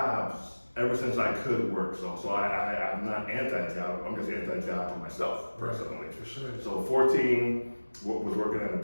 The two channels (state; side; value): inverted; both; correlation -1.00